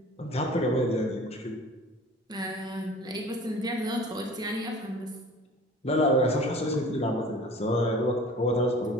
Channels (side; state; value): both; normal; correlation 0.43